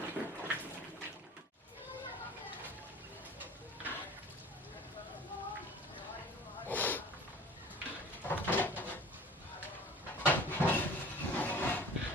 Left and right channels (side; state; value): both; normal; correlation 0.43